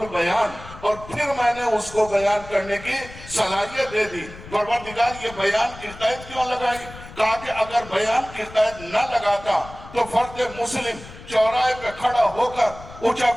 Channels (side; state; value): left; noise; rumble, 16 dB below the sound